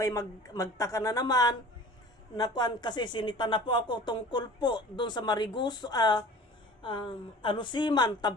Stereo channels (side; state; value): both; normal; correlation 0.43